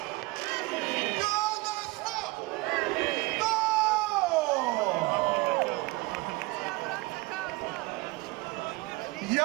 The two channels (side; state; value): left; quieter; 22.9 dB